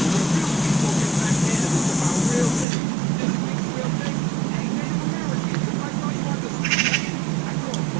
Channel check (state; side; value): drops out; left; at 2.7 s